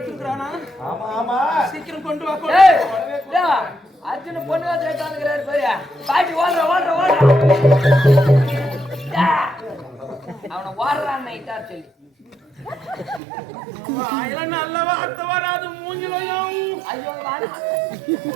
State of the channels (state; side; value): drops out; left; at 13.2 s